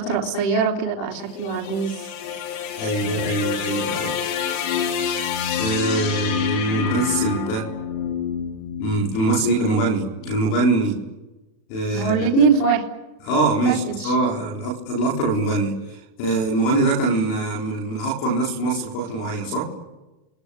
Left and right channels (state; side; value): late; right; 37 ms